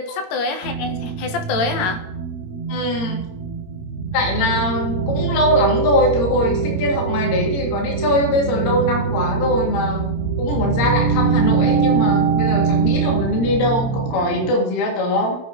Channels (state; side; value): late; right; 17 ms